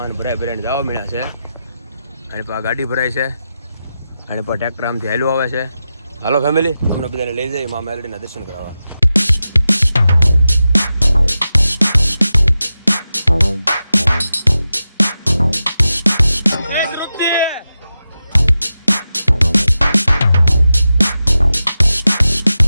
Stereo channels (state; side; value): inverted; both; correlation -0.91